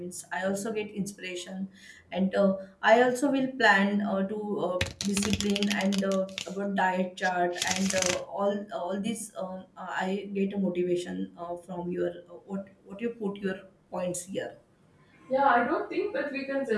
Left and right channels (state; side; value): identical; both; correlation 1.00